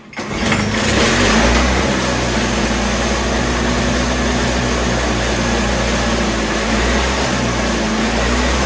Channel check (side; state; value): both; identical; correlation 1.00